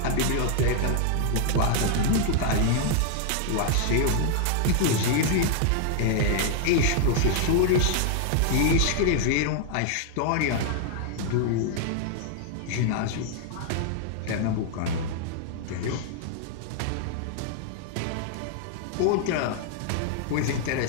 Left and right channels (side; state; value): both; different; correlation 0.00